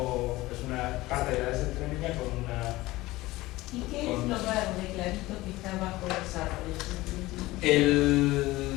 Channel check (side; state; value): right; quieter; 18.8 dB